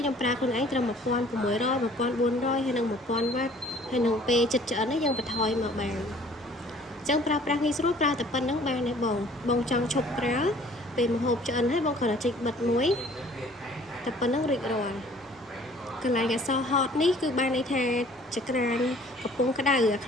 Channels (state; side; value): normal; both; correlation 0.54